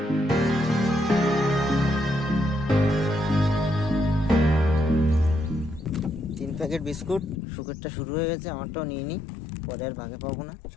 প্যাকেট বিস্কুট, সুখেরটা শুরু হয়ে গেছে, আমারটাও নিয়ে নিই, পরে আর ভাগে পাবো না।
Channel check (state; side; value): drops out; right; at 7.4 s